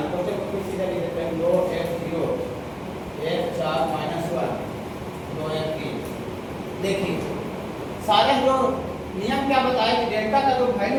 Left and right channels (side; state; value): both; identical; correlation 1.00